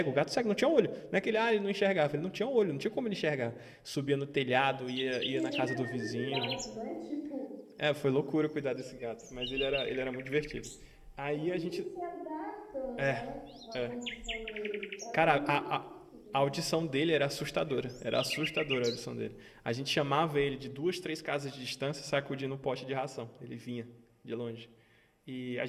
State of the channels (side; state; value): both; identical; correlation 1.00